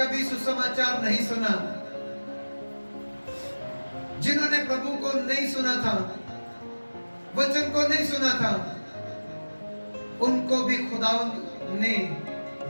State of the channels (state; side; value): inverted; both; correlation -1.00